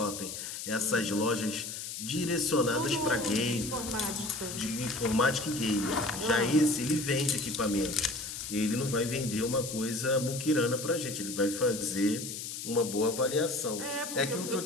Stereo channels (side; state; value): left; noise; hiss, 7 dB below the sound